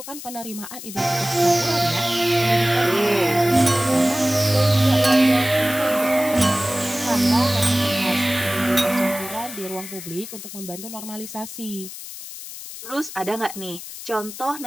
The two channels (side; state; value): left; noise; hiss, 12 dB below the sound